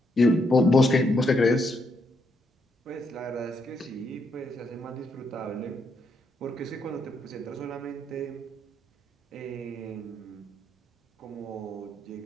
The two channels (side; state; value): both; normal; correlation 0.77